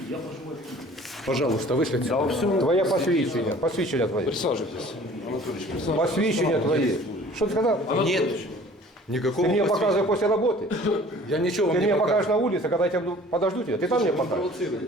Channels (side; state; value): both; normal; correlation 0.49